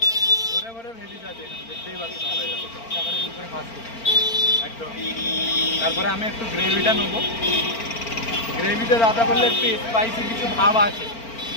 ভরে ভরে ভেজিস আছে এখানে, দেখতেই পাচ্ছ সবাই একদম। তারপরে আমি একটু গ্রেভিটা নেবো। গ্রেভিটা দাদা বললে একটু স্পাইসি কিছু ভাব আছে,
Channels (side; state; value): right; late; 4.4 ms